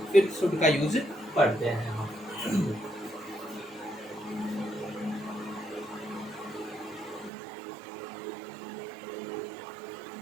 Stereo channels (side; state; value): left; drops out; at 7.3 s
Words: फिर शुड का यूज पढ़ते हैं हम।